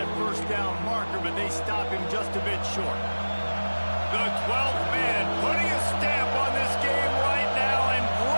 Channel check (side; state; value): both; inverted; correlation -1.00